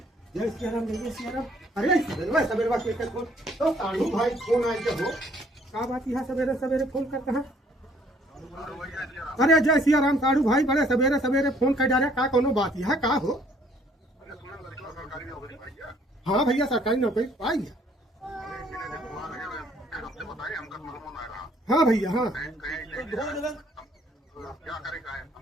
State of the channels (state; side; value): normal; both; correlation 0.62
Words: जय सियाराम, जय जय सियाराम। अरे सवेरे सवेरे के फोन तो साढ़ू भाई फोन आए हो का बात है? सवेरे सवेरे फोन करते हैं। अरे जय सियाराम साढ़ू भाई, बड़े सवेरे सवेरे फोन कर जा रहे का कोनो बात है का हो? हाँ भैया सरकारी नौकरी पाई है। हाँ भैया हाँ